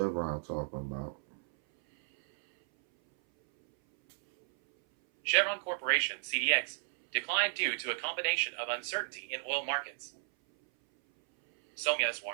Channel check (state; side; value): silent; left; 56 dB below the other